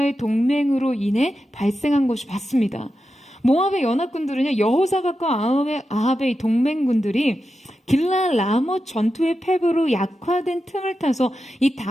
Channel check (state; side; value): normal; both; correlation 0.90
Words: 동맹으로 인해 발생한 것이 맞습니다. 모압의 연합군들은요, 여호사밧과 아합의 동맹군들이 길라 라못 전투의 패배로 약화된 틈을 타서 이